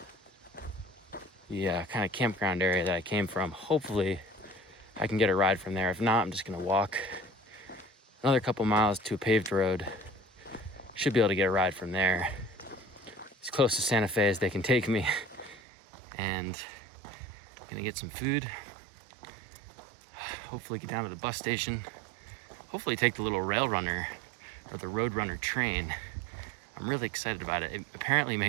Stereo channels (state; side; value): drops out; left; at 15.6 s